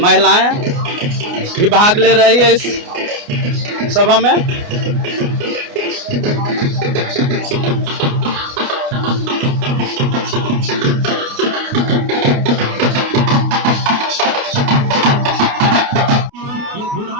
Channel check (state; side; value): late; left; 29 ms